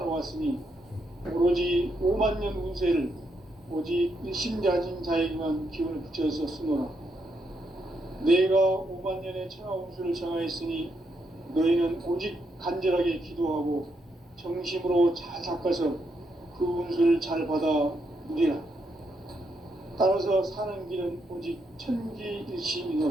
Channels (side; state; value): both; normal; correlation 0.79